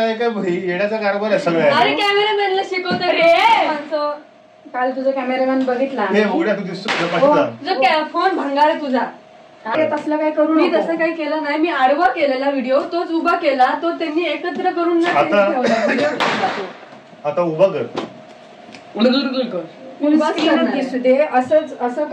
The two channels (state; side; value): identical; both; correlation 1.00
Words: का भाई? येण्याचा कारभार आहे सगळं. अरे कॅमेरामॅनला शिकवतो रे. काल तुझा कॅमेरामॅन बघितला. तू दिसतो फोन भंगार आहे तुझा. तसलं काय करू? मी तसं काही केलं नाही. मी आडवा केलेला व्हिडिओ, तोच उभा केला. तो त्यांनी एकत्र करून आता उभा कर. दिसू दे. असंच असं